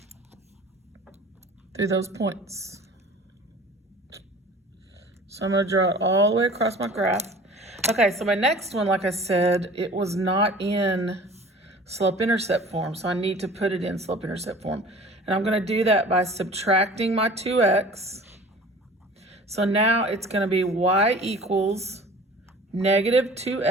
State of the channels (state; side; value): normal; both; correlation 0.44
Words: through those points. So I'm going to draw it all the way across my graph. Okay, so my next one, like I said, it was not in slope-intercept form, so I need to put it in slope-intercept form. And I'm going to do that by subtracting my 2x. So now it's going to be y equals negative